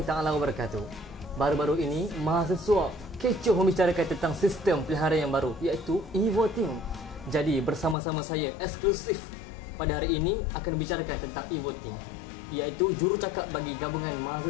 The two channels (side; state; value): right; drops out; at 8.0 s